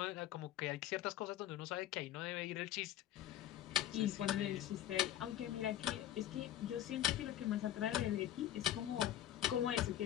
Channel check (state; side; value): quieter; right; 12.5 dB